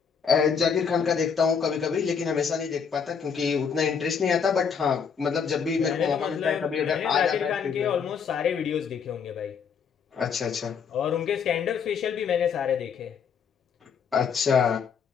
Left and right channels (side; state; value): right; quieter; 6.6 dB